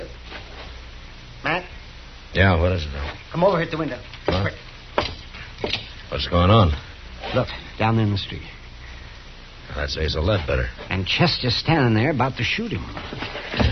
Matt? Yeah, what is it, Doc? Come over here at the window. Huh? What's going on? Look, down in the street. That's Asa Ledbetter. And Chester's standing there about to shoot him.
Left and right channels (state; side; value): identical; both; correlation 1.00